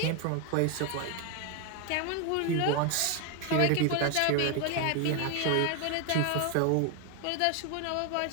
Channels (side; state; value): both; different; correlation 0.01